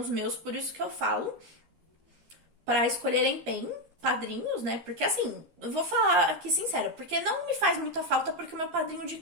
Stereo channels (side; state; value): left; late; 13 ms